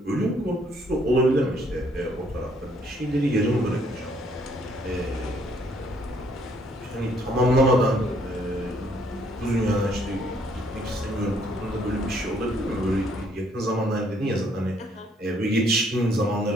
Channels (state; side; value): normal; both; correlation 0.66